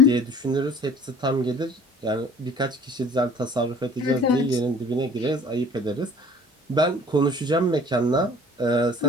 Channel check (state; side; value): normal; both; correlation 0.48